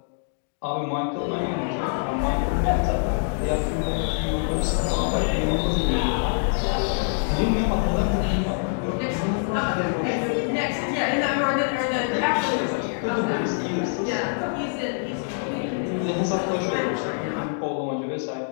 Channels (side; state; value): right; silent; digital silence